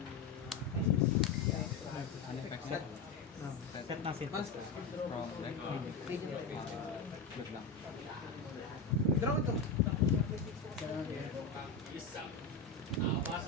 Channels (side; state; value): right; quieter; 4.4 dB